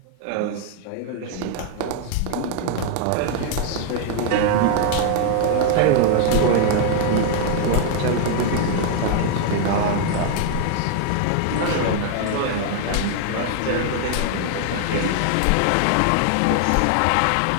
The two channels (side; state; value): both; different; correlation 0.00